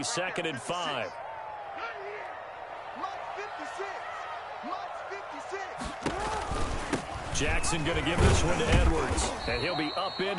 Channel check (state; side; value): identical; both; correlation 1.00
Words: and 5. Jackson going to give this one to Edwards. And he'll be